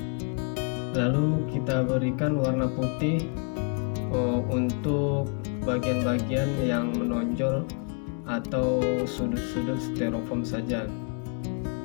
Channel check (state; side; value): quieter; right; 39.9 dB